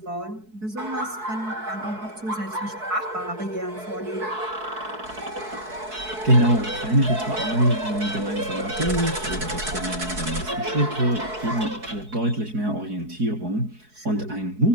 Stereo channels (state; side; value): late; left; 4.7 ms